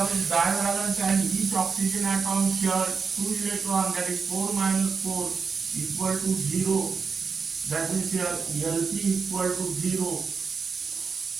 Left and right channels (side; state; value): left; quieter; 5.3 dB